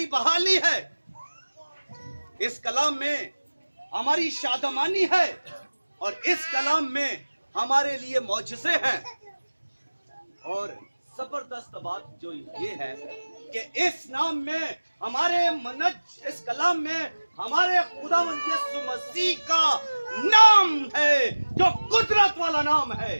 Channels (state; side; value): inverted; both; correlation -1.00